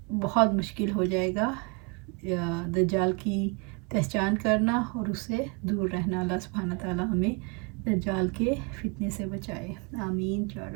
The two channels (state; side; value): quieter; left; 31.9 dB